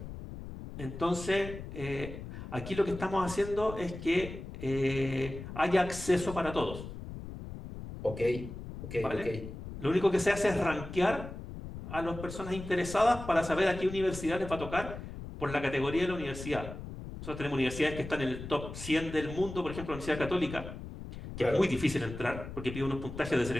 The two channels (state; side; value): noise; left; rumble, 10 dB below the sound